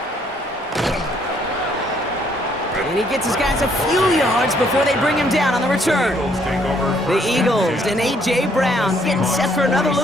And he gets his guys a few yards before they bring him down on the return. The Eagles and A.J. Brown getting set for another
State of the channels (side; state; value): both; normal; correlation 0.67